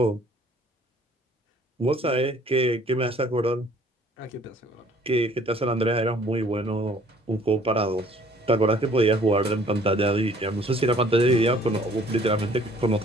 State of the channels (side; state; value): both; normal; correlation 0.57